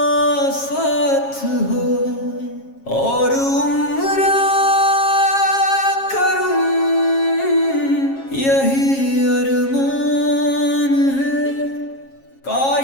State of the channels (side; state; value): right; late; 7.4 ms